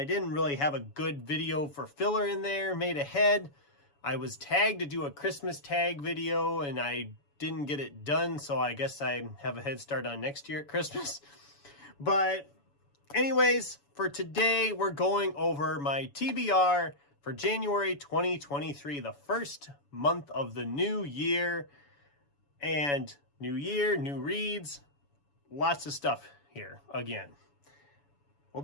didn't really have a good video for filler in there made ahead. I was tagged to do a Christmas tag video, and I didn't get it done, so I guess I have a head start on next year at Christmas. But anyways, for today, we're going over my TBR for January 2023, the first month of the new year. And new year, new reads, lots of stuff here again.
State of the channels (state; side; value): late; right; 7.0 ms